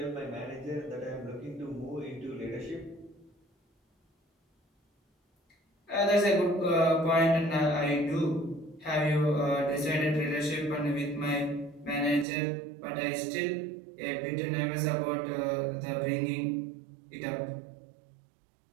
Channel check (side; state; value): left; drops out; at 12.2 s